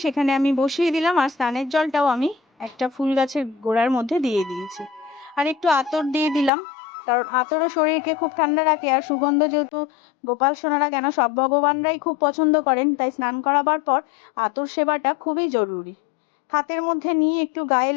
সেখানে আমি বসিয়ে দিলাম, আর স্নানের জলটাও আমি একটা ফুল গাছের গোড়ার মধ্যে দিয়ে দিয়েছি। আর একটু আতর দিয়ে দিলাম, কারণ আতরও শরীরকে খুব ঠান্ডা রাখে, আর সুগন্ধ যেহেতু গোপাল সোনারা কেন সব ভগবানরাই খুব পছন্দ করেন, তাই স্নান করাবার পর আতর সেবাটা খুবই জরুরি। হাতের মধ্যে নিয়ে একটু গায়ে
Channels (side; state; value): right; drops out; at 6.5 s